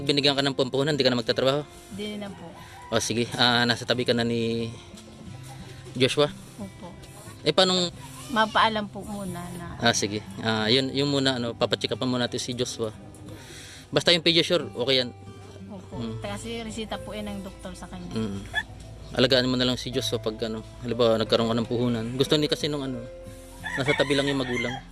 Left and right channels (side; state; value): both; identical; correlation 1.00